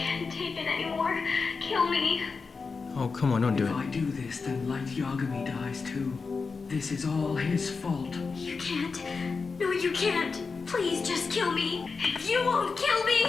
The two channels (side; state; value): right; quieter; 4.7 dB